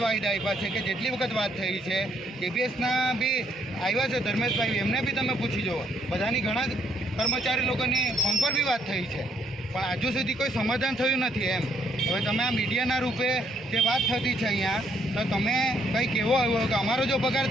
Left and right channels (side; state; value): both; normal; correlation 0.70